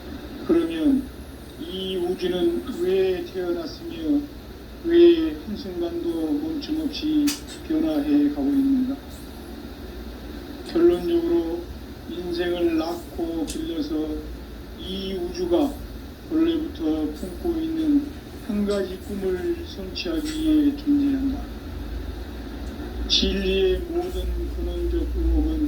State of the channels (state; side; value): identical; both; correlation 1.00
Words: 그러면 이 우주는 왜 태어났으며 왜 한순간도 멈춤없이 변화해 가고 있는가? 결론적으로 인생을 낳고 길러서 이 우주가 원래부터 품고 있는 한 가지 꿈을 성취하기 위해 존재한다. 진리의 모든 근원적